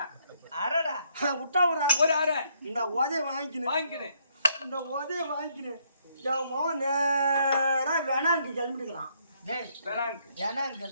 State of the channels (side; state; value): both; inverted; correlation -0.71